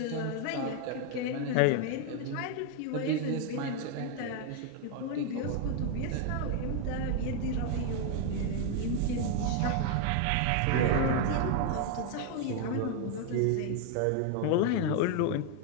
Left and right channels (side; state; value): both; different; correlation 0.00